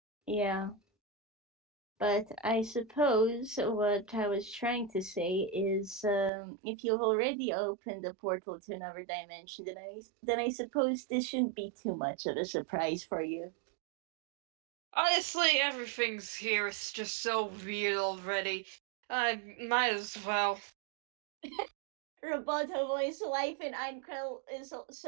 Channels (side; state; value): left; drops out; at 6.3 s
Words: yeah. But I suppose what I was trying to say is, if you've already opened a portal to another dimension, then I suppose this shouldn't be too much of a surprise for you. Honestly, everything's here is just so weird already. I might as well. Roboto voice life in Einkrell is